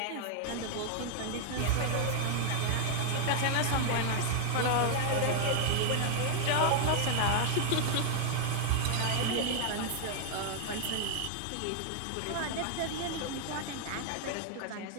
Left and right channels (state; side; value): different; both; correlation 0.00